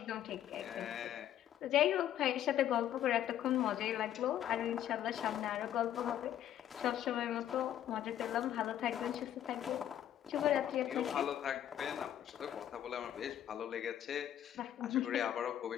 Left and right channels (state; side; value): quieter; right; 11.1 dB